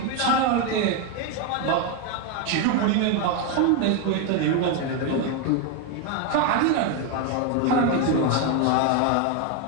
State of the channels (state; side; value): different; both; correlation 0.02